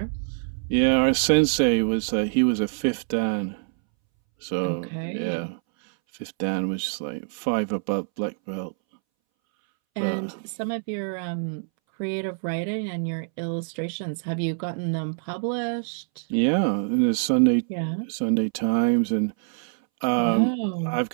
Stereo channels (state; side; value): silent; left; 61 dB below the other